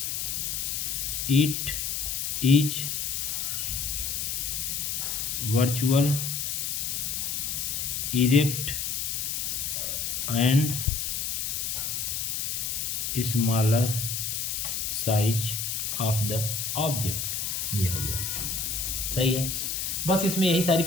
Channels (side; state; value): left; noise; hiss, 1 dB below the sound